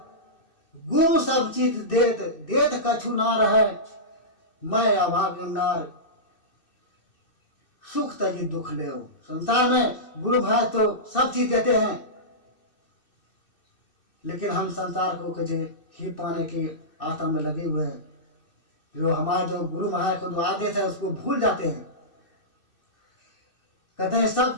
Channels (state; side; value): late; right; 2.6 ms